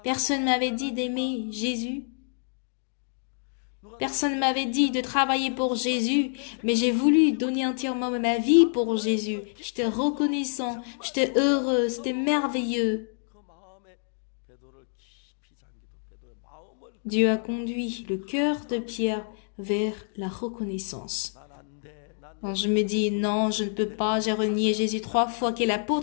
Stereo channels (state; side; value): silent; right; digital silence